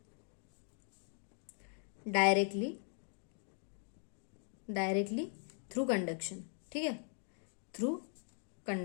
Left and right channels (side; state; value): right; silent; 51 dB below the other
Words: directly through conduction, ठीक है, थ्रू